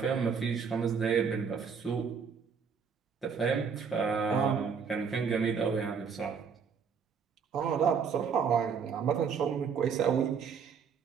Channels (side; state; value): left; quieter; 6.3 dB